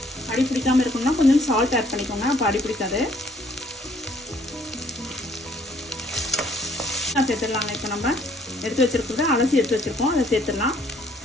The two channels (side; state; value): both; normal; correlation 0.63